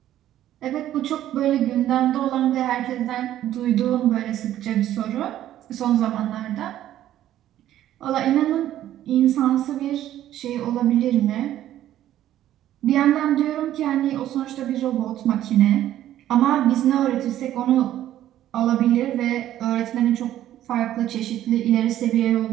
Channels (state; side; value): quieter; left; 12.5 dB